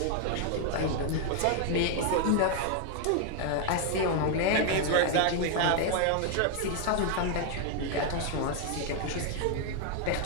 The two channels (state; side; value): different; both; correlation 0.00